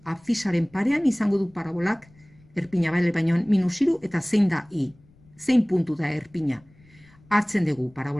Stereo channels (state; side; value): noise; left; rumble, 29 dB below the sound